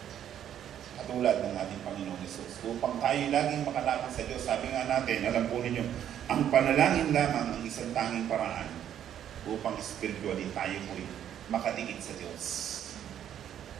Katulad ng ating Panginoong Hesus. Upang tayo laging makalapit sa Diyos, sabi nga natin, alam po ninyo, ang panalangin lamang ang isang tanging paraan upang spiritually tayo po'y makadikit sa Diyos.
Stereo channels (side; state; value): left; quieter; 10.2 dB